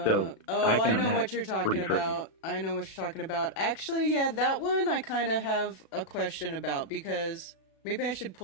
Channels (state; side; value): late; right; 36 ms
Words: know what you're talking about. I know what you're talking about. Actually, yeah, that one I kind of have a question about, because maybe I should